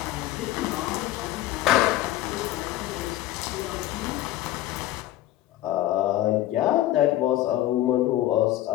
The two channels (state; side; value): quieter; right; 14.8 dB